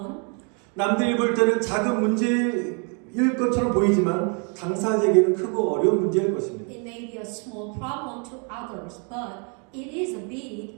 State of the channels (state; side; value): quieter; left; 37.7 dB